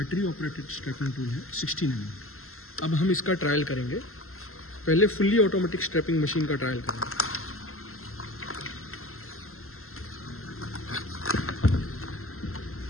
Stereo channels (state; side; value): late; right; 0.62 ms